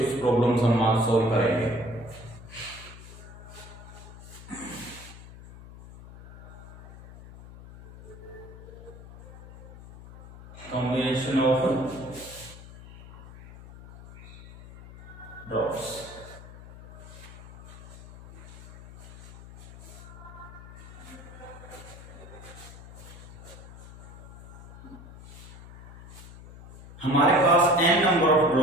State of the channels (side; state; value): left; noise; hum, 15 dB below the sound